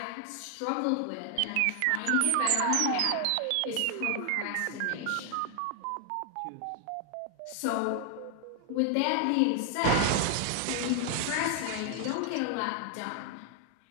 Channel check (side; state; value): both; different; correlation 0.00